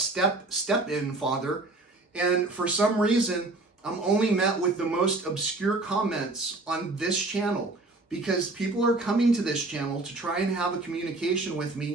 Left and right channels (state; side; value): quieter; left; 3.1 dB